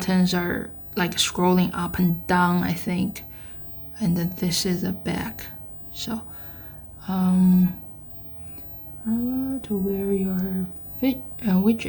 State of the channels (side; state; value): both; identical; correlation 1.00